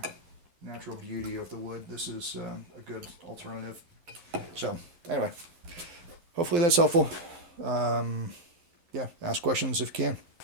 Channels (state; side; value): late; left; 12 ms